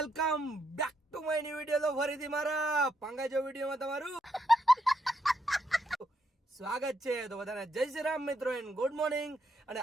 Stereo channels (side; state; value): both; normal; correlation 0.78